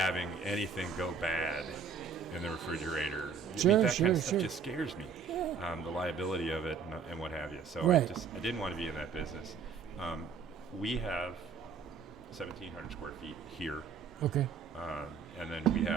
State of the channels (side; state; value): left; quieter; 5.9 dB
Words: anything go bad in the refrigerator, Sure, that sure, kind of stuff sure. just scares me. The liability of it and what have you. So Right. I didn't want to be in that business. We have 1,700 square feet here. Okay. And then we